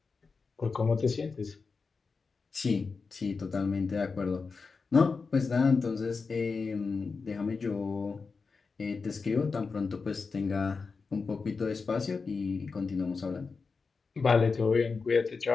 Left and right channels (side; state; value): right; quieter; 4.7 dB